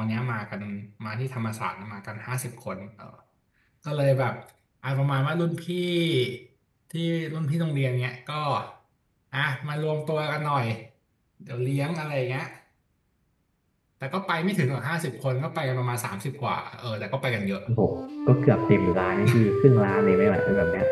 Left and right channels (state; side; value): identical; both; correlation 1.00